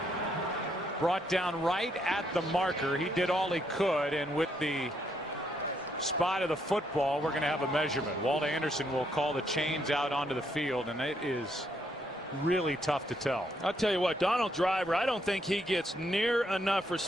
brought down right at the marker. He did all he could, and with the spot of the football, we're going to have a measurement. Walt Anderson will call the chains out onto the field, and it is really tough to tell. I'll tell you what, Donald Driver, I don't think he gets near enough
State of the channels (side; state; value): both; normal; correlation 0.74